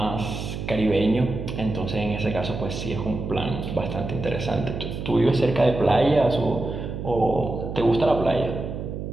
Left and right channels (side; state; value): right; noise; hum, 6 dB below the sound